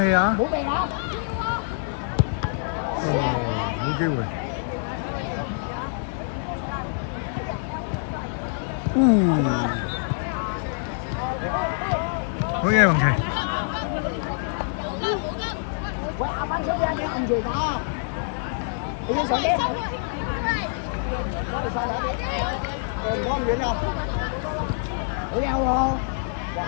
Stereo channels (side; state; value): right; silent; digital silence